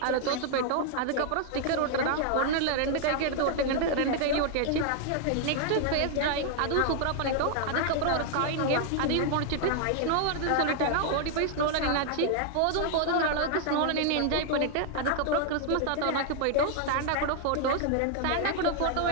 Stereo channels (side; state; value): both; different; correlation 0.00